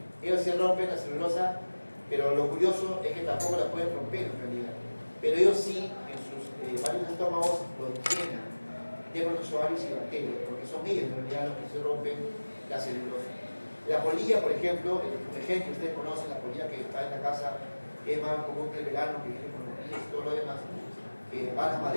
ellos sí rompen la celulosa, pero lo curioso es que tampoco la pueden romper en realidad. Pero ellos sí, en sus varios estómagos, lo llenan de protozoarios y bacterias, porque son ellos en realidad los que se rompen la celulosa. La polilla, por ejemplo, el ejemplo que ustedes conocen, la polilla que está en la casa, que es más común que el verano, que viene con los pies y todo lo demás, que va a la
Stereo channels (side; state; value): both; inverted; correlation -1.00